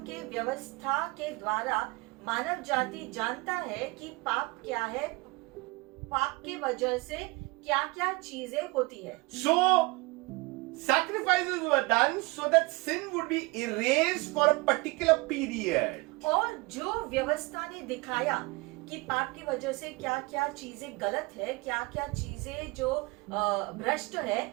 के व्यवस्था के द्वारा मानव जाति जानता है कि पाप क्या है, पाप के वजह से क्या क्या चीजें होती है। So, sacrifices were done so that sin would be erased for a particular period. और जो व्यवस्था ने दिखाया कि पाप की वजह से क्या क्या चीजें गलत है, क्या क्या चीजें जो भ्रष्ट है,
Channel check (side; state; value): left; quieter; 25.5 dB